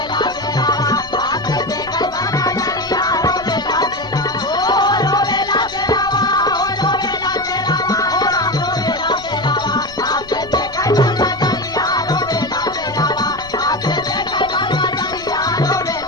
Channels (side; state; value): left; noise; rumble, 20 dB below the sound